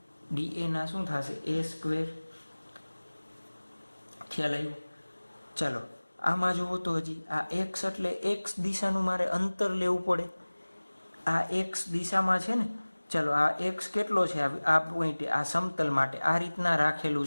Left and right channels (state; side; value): inverted; both; correlation -1.00